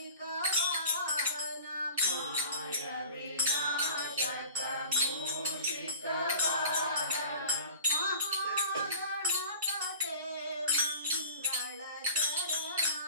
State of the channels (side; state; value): both; inverted; correlation -0.41